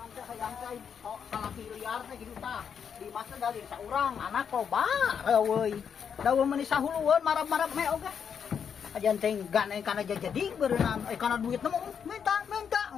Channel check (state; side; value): quieter; right; 7.3 dB